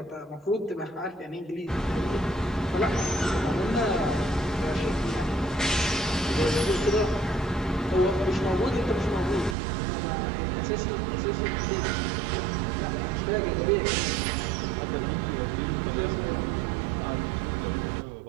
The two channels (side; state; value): left; drops out; at 9.6 s